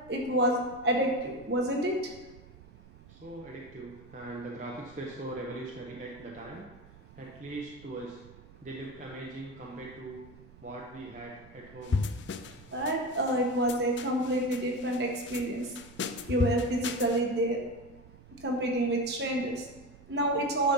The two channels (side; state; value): right; noise; rumble, 21 dB below the sound